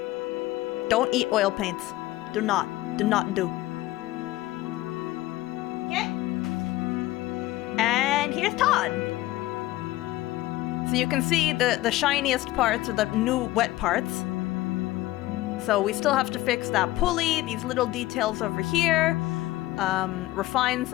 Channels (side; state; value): right; quieter; 17.1 dB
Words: Don't eat oil paints. Do not do. Okay. And here's Todd. So you can see the shiniest parts are the new wet parts. So we still have to fix that pulley, these little details over here, refine